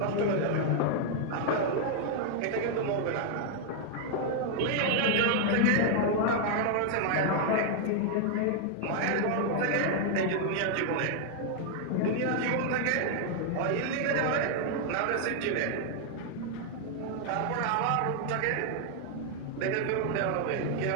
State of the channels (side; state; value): both; different; correlation 0.00